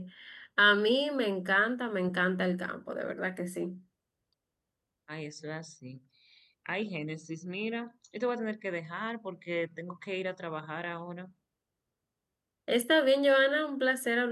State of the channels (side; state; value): both; identical; correlation 1.00